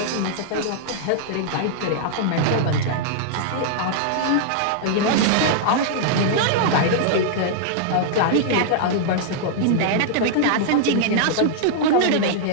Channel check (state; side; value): different; both; correlation -0.01